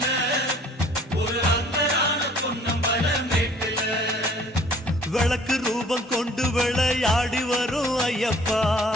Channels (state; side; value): normal; both; correlation 0.55